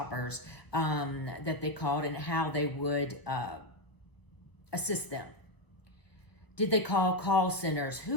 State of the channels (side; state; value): right; late; 1.0 ms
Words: that they called, and how they would assist them. Did they call call centers?